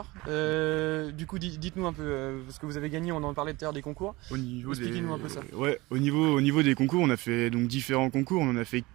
Du coup, dites-nous un peu ce que vous avez gagné. On en parlait tout à l'heure des concours. Expliquez-nous un peu ça. Ouais, au niveau des concours, on a fait donc différents concours. On en a fait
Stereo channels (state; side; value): quieter; left; 21.6 dB